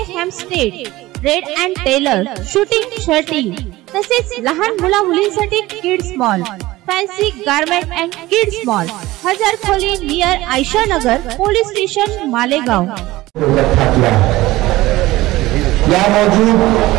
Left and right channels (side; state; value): left; quieter; 18.1 dB